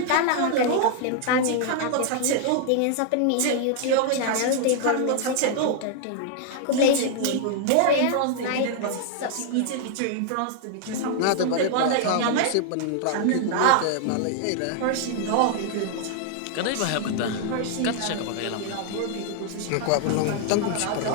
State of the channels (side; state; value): both; different; correlation 0.00